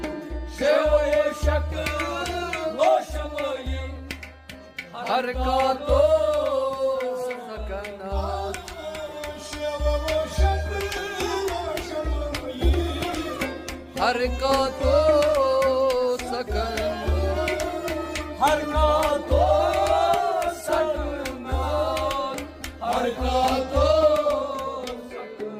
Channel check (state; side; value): identical; both; correlation 1.00